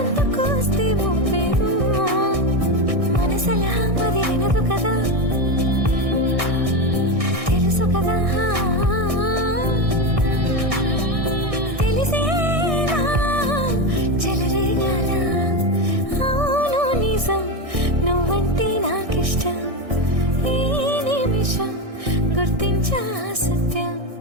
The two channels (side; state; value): left; late; 1.6 ms